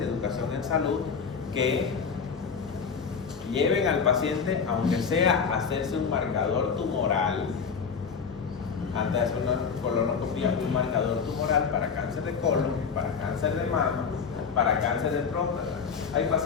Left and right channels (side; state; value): right; quieter; 6.0 dB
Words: educación en salud que lleven al paciente, aunque sea a hacerse un marcador tumoral, antes de hacer una colonoscopia, un marcador tumoral para cáncer de colon, para cáncer de mama, para cáncer de próstata. Hay